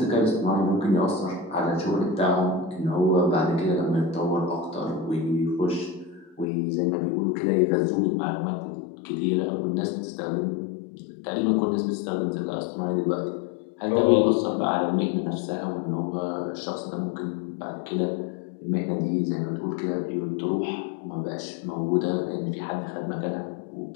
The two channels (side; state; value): right; drops out; at 6.5 s